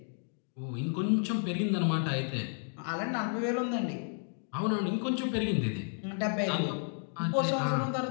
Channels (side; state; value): right; silent; 56 dB below the other